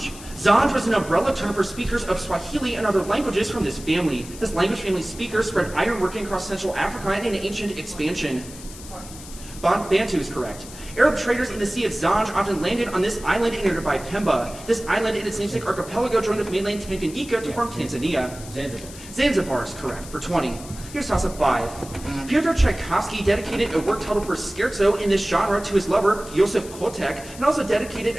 Zanj was an umbrella term for speakers of Swahili and other languages from this family. This language family's speakers spread ironworking across Central Africa in an ancient expansion. Bantu is correct. Arab traders in the Sea of Zanj often landed on this island in nearby Pemba. This island and its namesake archipelago joined with mainland Tanganyika to form Tanzania. Zanzibar. Zanzibar is correct for 20. Here's toss-up 5. Pyotr Tchaikovsky dedicated a work titled for scherzo in this genre to his lover, Josef Kotek, and also dedicated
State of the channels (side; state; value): left; noise; hiss, 16 dB below the sound